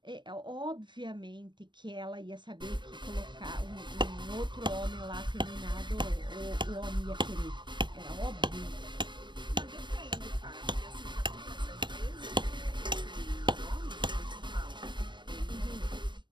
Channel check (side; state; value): left; late; 0.22 ms